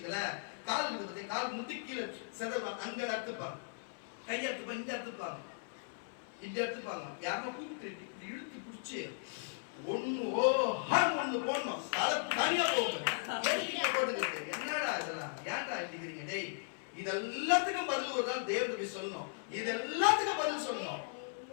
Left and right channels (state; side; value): silent; right; 53 dB below the other